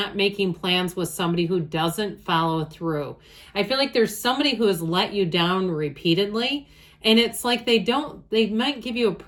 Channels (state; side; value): identical; both; correlation 1.00